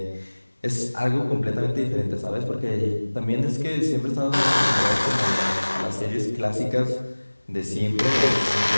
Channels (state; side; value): inverted; both; correlation -1.00